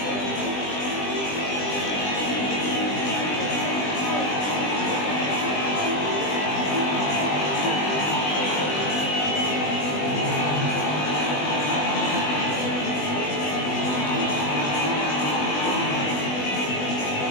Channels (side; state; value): right; late; 20 ms